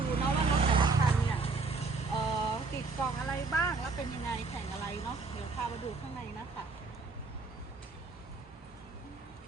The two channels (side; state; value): left; quieter; 4.1 dB